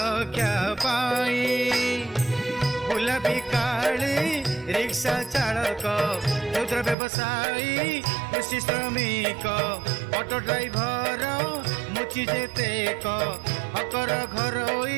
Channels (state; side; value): drops out; left; at 7.0 s